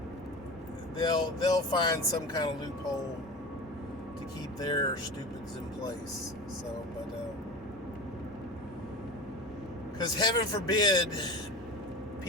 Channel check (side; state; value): both; normal; correlation 0.30